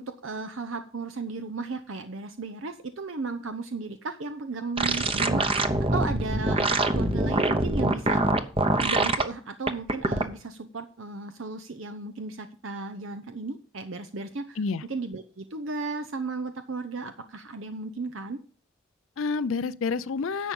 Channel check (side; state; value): both; normal; correlation 0.39